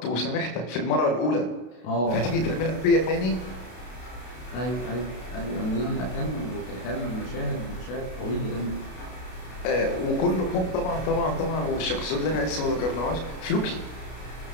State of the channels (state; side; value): late; right; 32 ms